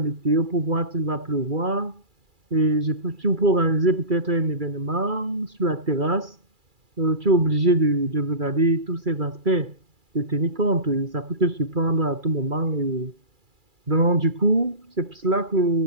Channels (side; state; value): left; late; 2.3 ms